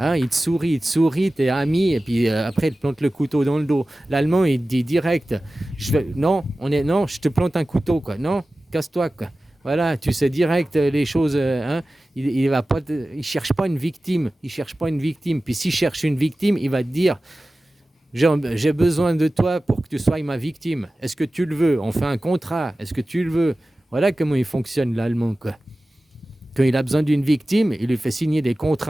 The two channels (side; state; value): both; normal; correlation 0.96